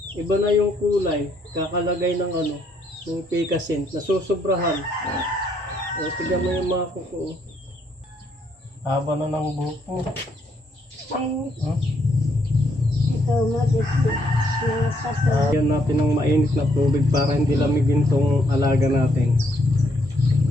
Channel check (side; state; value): both; normal; correlation 0.72